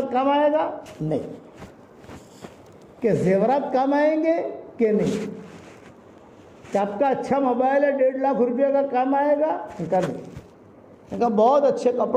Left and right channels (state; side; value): identical; both; correlation 1.00